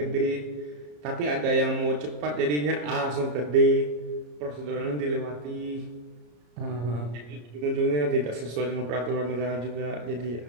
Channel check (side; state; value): left; late; 34 ms